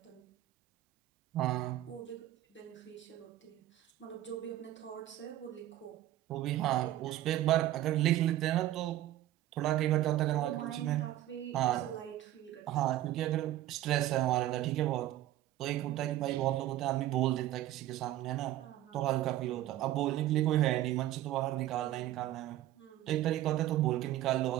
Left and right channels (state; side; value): quieter; left; 14.1 dB